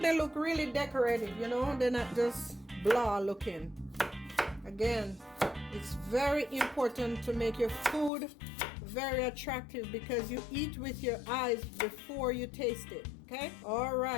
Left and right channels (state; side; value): drops out; right; at 8.1 s